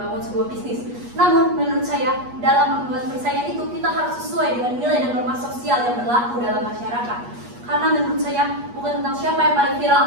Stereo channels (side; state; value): left; late; 8.3 ms